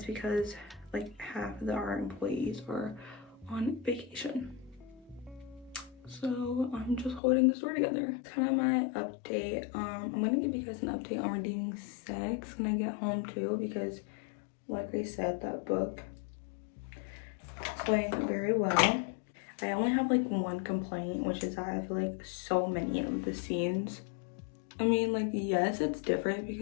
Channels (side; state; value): right; drops out; at 7.2 s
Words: because like half of our employees are on vacation. So I'm just holding the store together. It's kind of my update. I'm gonna give you guys an update on Redeeming 6 when I get home too, because like I said, that book is going very well. I only have like one complaint, which is that I feel like so many of the scenes, I mean, like, yes, it's different